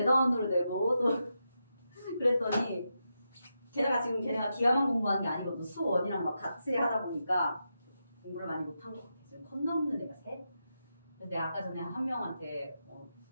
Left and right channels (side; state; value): both; inverted; correlation -0.86